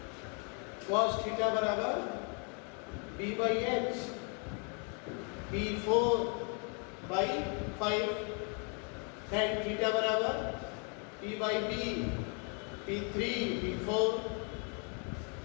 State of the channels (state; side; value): quieter; right; 38.1 dB